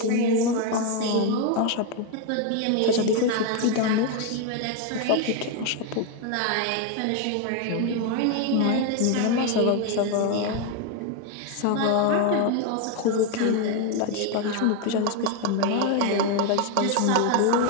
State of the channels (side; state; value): both; different; correlation 0.01